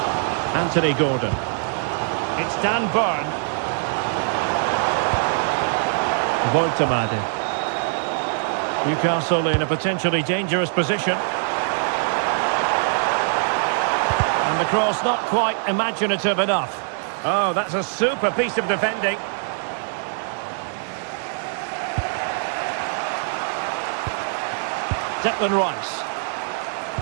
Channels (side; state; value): left; silent; digital silence